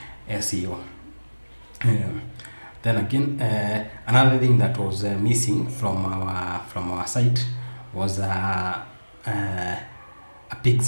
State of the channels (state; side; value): inverted; both; correlation -1.00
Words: SEO. Then again, another thing that was missing from our site was a